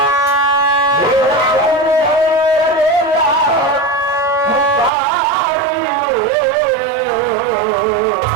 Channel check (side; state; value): left; drops out; at 4.9 s